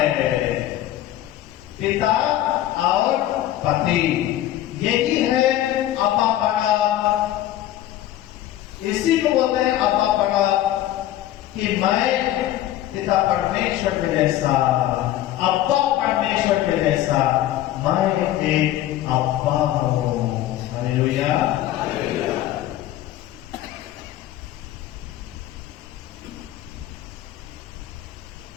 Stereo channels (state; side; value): quieter; right; 13.5 dB